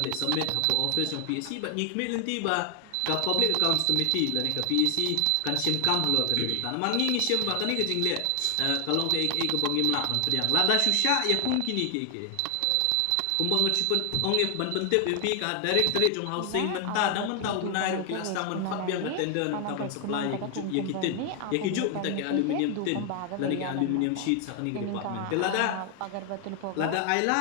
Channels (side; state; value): both; different; correlation 0.00